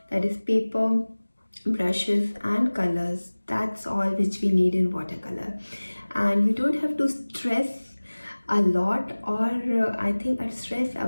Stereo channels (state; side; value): inverted; both; correlation -1.00